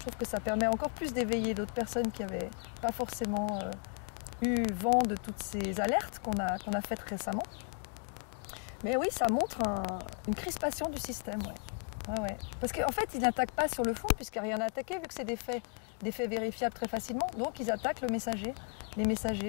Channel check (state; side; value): quieter; right; 40.0 dB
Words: trouve que ça permet encore plus d'éveiller d'autres personnes qui n'avaient pas forcément eu vent de toutes ces alertes qu'on a faites récemment. Mais oui, ça montre une crispation du système, ouais. Parce qu'en fait, ils n'attaquent pas sur le fond, puisqu'il n'y a rien à attaquer, vu que c'est des faits vérifiables très facilement. Donc, ils attaquent les